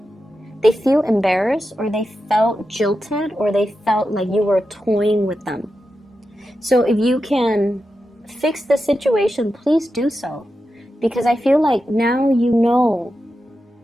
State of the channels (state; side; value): normal; both; correlation 0.90